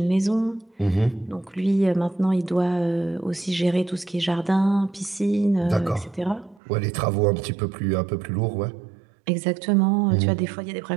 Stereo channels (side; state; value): left; drops out; at 6.6 s